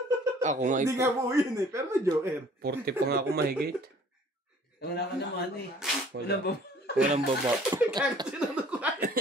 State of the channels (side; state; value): both; normal; correlation 0.54